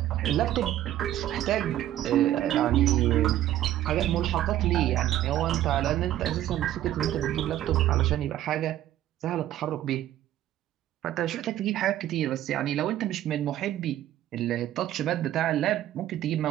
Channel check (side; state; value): left; quieter; 12.9 dB